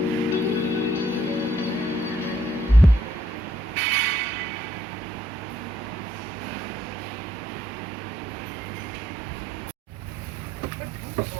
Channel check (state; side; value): normal; both; correlation 0.70